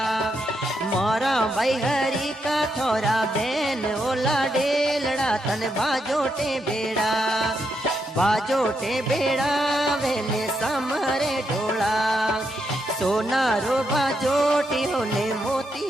मोरा भाई हरी का थोरा बैन होला डेलड़ा तन बाजोटे बेड़ा। बाजोटे बेड़ा वेने समरे ढोला। सोनारो बाजोटियो ने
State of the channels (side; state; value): both; normal; correlation 0.81